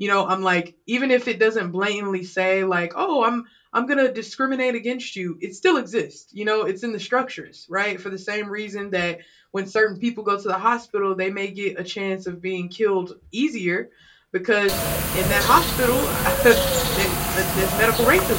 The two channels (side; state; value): both; identical; correlation 1.00